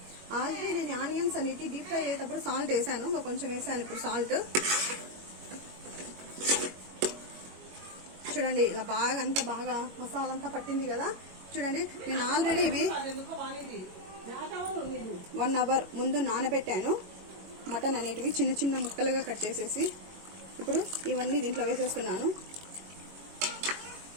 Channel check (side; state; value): left; late; 22 ms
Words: ఆల్రెడీ నేను ఆనియన్స్ అనేవి డీప్ ఫ్రై అయ్యేటప్పుడు సాల్ట్ వేసాను. కొంచెం వేసాను ఇప్పుడు సాల్ట్. చూడండి ఇలా బాగా అంతా బాగా మసాలా అంతా పట్టింది కదా. చూడండి నేను ఆల్రెడీ ఇవి 1 అవర్ ముందు నానబెట్టాను. మటన్ అనేటివి చిన్న చిన్న ముక్కలుగా కట్ చేసేసి ఇప్పుడు ఇవన్నీ దీంట్లో వేసేస్తున్నాను.